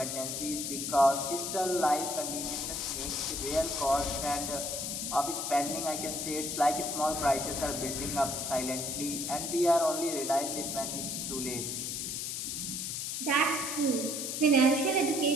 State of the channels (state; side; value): noise; left; hiss, 3 dB below the sound